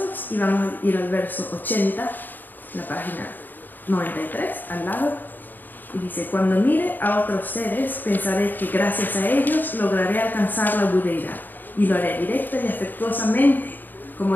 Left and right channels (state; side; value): late; right; 0.090 ms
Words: y vamos a ir al verso 80, la página 93, al lado, y dice, cuando mire a otros seres, pensaré que gracias a ellos lograré alcanzar la budeidad, y lo haré directa y afectuosamente. Como